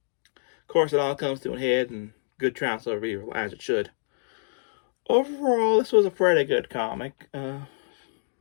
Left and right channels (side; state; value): right; silent; digital silence